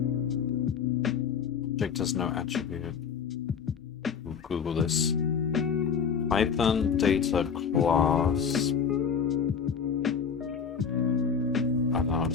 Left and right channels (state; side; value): quieter; right; 6.6 dB